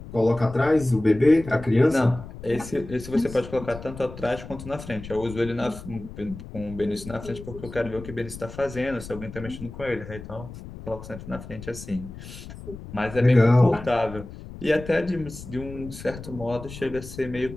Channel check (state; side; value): noise; left; rumble, 13 dB below the sound